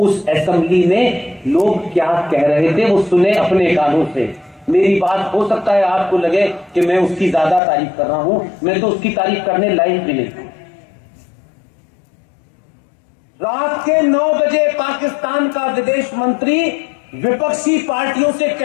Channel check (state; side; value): drops out; right; at 7.6 s